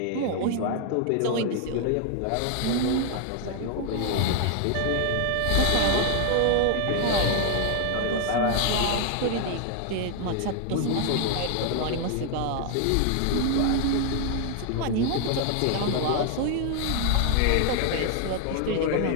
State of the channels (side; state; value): both; different; correlation 0.00